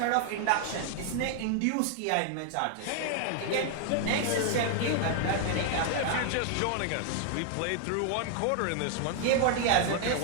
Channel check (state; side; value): different; both; correlation 0.00